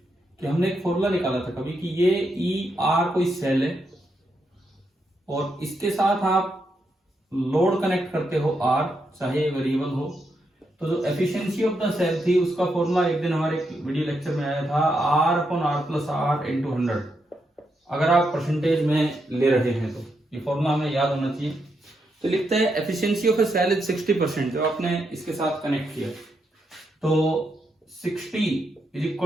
कि हमने एक फॉर्मूला निकाला था कभी कि ये ई आर कोई सेल है और इसके साथ आप लोड कनेक्ट करते हो आर, चाहे वेरिएबल हो। तो जो एफिशिएंसी ऑफ द सेल थी उसका फॉर्मूला एक दिन हमारे वीडियो लेक्चर में आया था, R upon R plus R into 100। अगर आप परसेंटेज में ले रहे हैं तो ये फॉर्मूला हमें याद होना चाहिए। तो लिखते हैं efficiency of a cell is 60%। जो आपने इसके साथ कनेक्ट किया तो 60 is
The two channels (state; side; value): normal; both; correlation 0.82